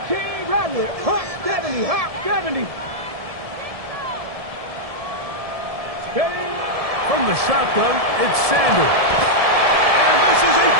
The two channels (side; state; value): left; late; 1.7 ms